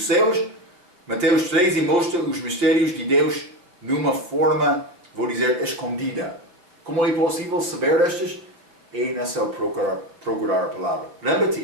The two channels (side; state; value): left; late; 5.7 ms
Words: céus. Mateus 13 mostra os mistérios de Deus numa forma, vou dizer, escondida. Como é possível saber estas? É necessário procurar a palavra.